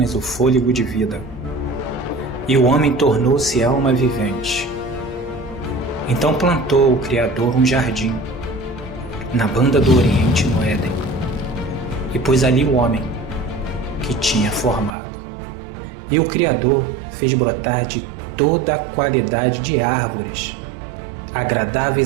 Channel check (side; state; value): left; drops out; at 15.0 s